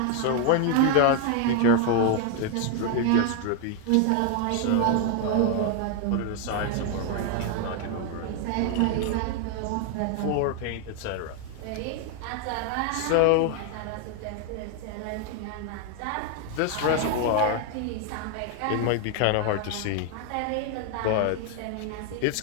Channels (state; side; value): different; both; correlation 0.01